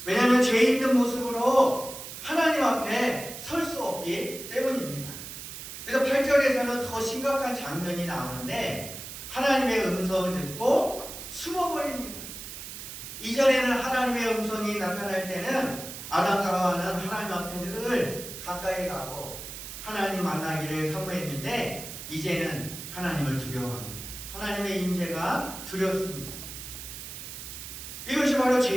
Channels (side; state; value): right; noise; hiss, 10 dB below the sound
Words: 왜냐하면 죄 있는 모습으로 하나님 앞에 설 수 없기 때문입니다. 그래서 8절에서는 더 심각한 장면이 나오는데 하나님의 음성을 듣고 숨어버립니다. 이전에는 하나님의 음성이 나타날 때는 아담과 하와는 하나님 앞에 늘 가까이 가고 하나님 만나기를 사모했는데 이제는 하나님을 두려워합니다. 하나님의 임재가 두렵습니다. 이것이 바로